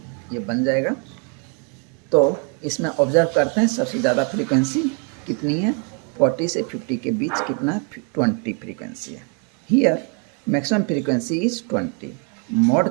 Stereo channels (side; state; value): left; quieter; 38.3 dB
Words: ये बन जाएगा। तो इसमें ऑब्जर्व करते हैं सबसे ज़्यादा फ्रीक्वेंसी कितनी है 40 से 50 के बीच कितना 20 फ्रीक्वेंसी है। Here maximum frequency is 20, mode